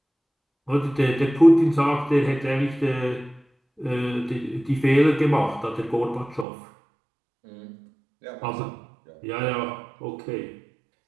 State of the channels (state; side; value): drops out; left; at 6.5 s